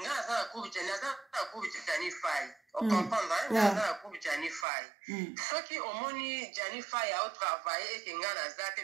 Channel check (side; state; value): left; drops out; at 4.7 s